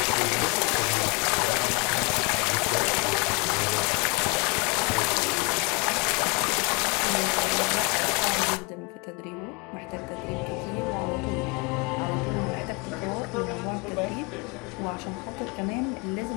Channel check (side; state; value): right; quieter; 30.5 dB